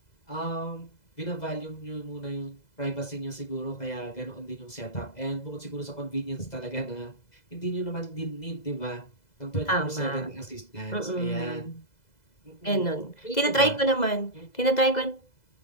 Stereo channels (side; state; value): right; late; 2.0 ms